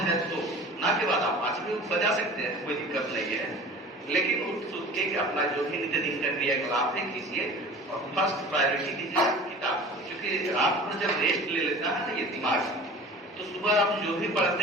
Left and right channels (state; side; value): normal; both; correlation 0.41